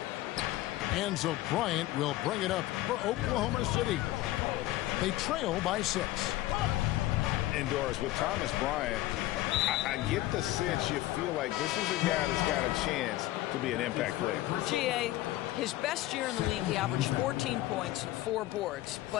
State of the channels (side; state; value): right; quieter; 16.3 dB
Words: And so Bryant will bring it up for Oklahoma City. They trail by 6. And Doris, with Thomas Bryant, I get the sense you feel like this is a guy that's got a chance to be an impact player. GA, his best year in the league, he averaged 14 points, 4 boards,